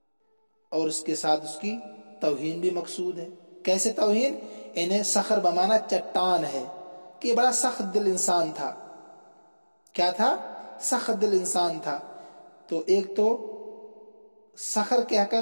اور اس کے ساتھ اس کی توہین بھی مقصود ہے۔ کیسے توہین؟ انہیں صخر بمانا چٹان ہے کہ بڑا سخت دل انسان تھا۔ کیا تھا؟ سخت دل انسان تھا۔ تو ایک تو صخر کہہ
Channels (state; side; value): inverted; both; correlation -1.00